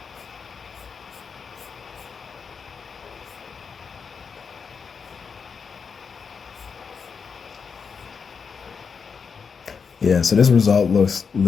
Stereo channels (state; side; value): quieter; right; 5.8 dB